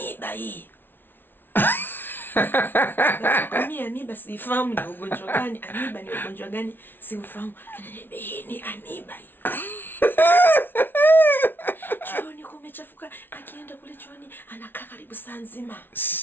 hii. Mimi amiba sifahamu ni ugonjwa gani, amiba ni ugonjwa gani sifahamu. Ananiambia hii ni amiba hii. Chooni kumechafuka, akienda kule chooni anakaa karibu saa nzima.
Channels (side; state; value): right; late; 0.10 ms